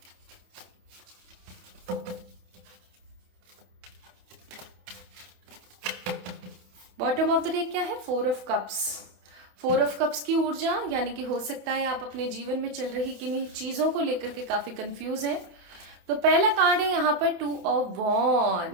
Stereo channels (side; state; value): left; late; 27 ms